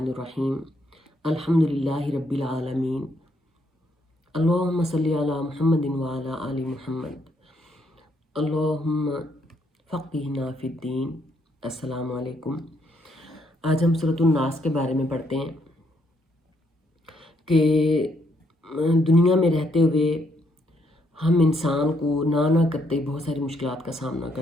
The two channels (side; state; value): both; normal; correlation 0.73